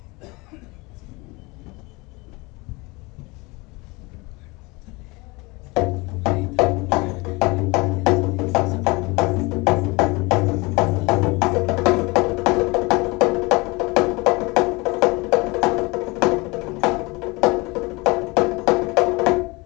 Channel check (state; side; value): quieter; right; 25.3 dB